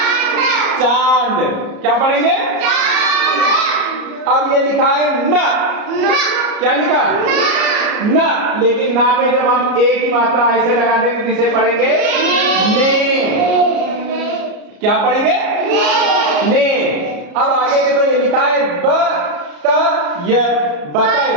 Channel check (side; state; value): left; late; 34 ms